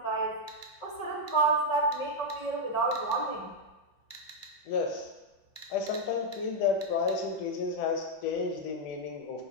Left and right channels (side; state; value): right; late; 5.3 ms